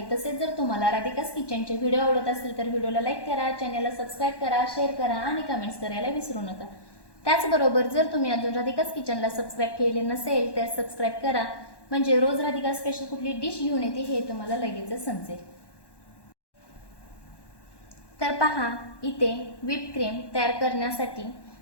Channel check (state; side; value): late; right; 1.1 ms